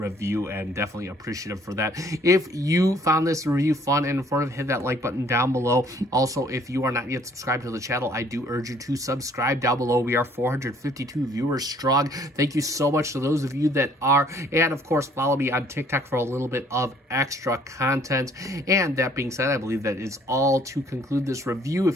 and definitely appreciative for that. If you found this review fun and informative, hit that like button down below. Also, if you are not yet subscribed to the channel, I do urge you to subscribe down below. We are 452 viewers strong. Thank you so much to those of you that are, and of course follow me on TikTok for a little bit of extra content. And that being said, I believe that is all to conclude this review.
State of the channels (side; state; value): both; normal; correlation 0.60